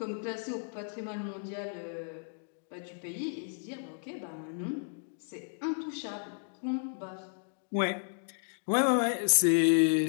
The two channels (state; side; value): silent; right; digital silence